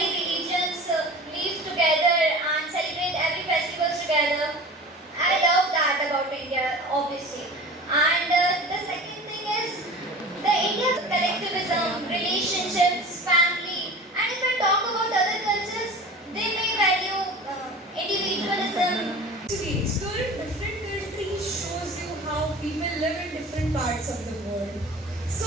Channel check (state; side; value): normal; both; correlation 0.38